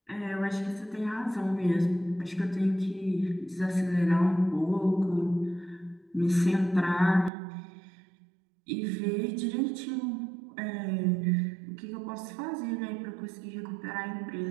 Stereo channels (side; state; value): left; drops out; at 7.3 s